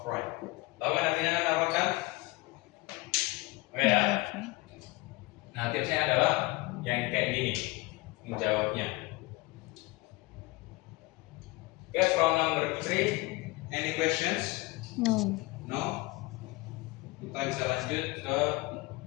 right. Tahu kan artinya kan apa kan? Oke ya. Nah, tipsnya adalah yang kayak gini menjawabnya. Okay, from number 3, any questions? No. No? Kita bisa lanjut ke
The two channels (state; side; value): quieter; right; 22.3 dB